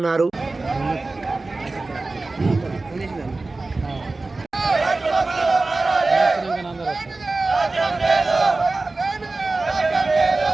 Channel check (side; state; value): left; quieter; 3.4 dB